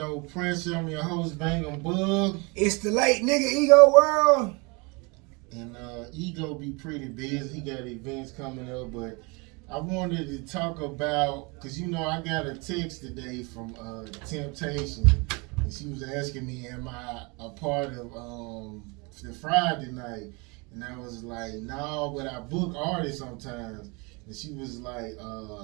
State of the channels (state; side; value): quieter; left; 29.0 dB